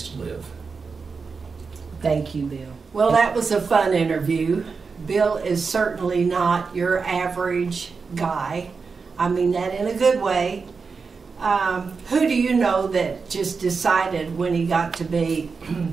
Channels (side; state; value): left; quieter; 5.0 dB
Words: to live. Thank you, Bill. Well, that was a fun interview. Bill is certainly not your average guy. I mean that in a good way. Who do you know that just decided when he got to be